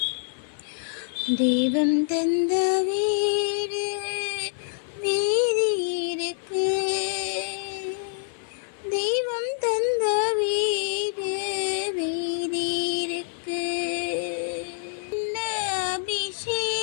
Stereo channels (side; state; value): right; silent; 56 dB below the other